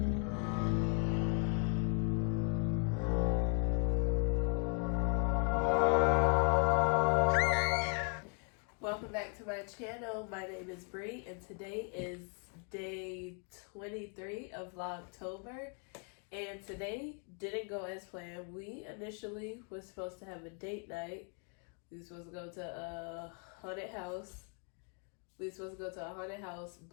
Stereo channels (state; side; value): quieter; right; 39.0 dB